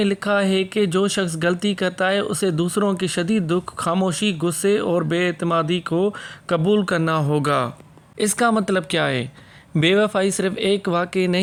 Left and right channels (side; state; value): both; identical; correlation 1.00